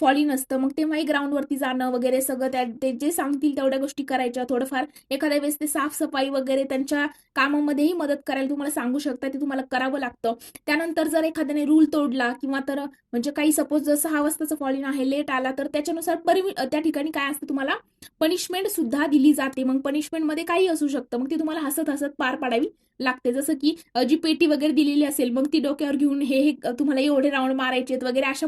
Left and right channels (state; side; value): identical; both; correlation 1.00